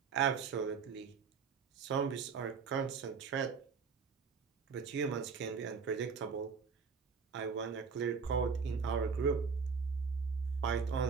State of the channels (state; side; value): quieter; left; 5.6 dB